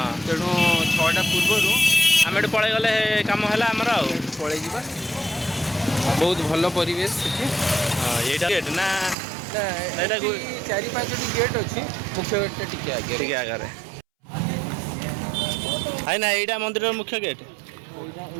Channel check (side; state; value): left; drops out; at 9.2 s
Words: ତେଣୁ 6ଟା ପୂର୍ବରୁ आम एटू पलि गले कम है आमर आउ ପଳେଇ ଯିବା ବହୁତ ଭଲ ପରିବେଶ ସେଠି यहीटा गेट ना ଏଇଟା ଏଠି 4-5ଟି ଗେଟ୍ ଅଛି ମୁଖ୍ୟ ଗେଟ୍ଟା ଟିକେ ଆଗରେ ठीक आगे है ना यहीटा मंदिर मुख्य गेट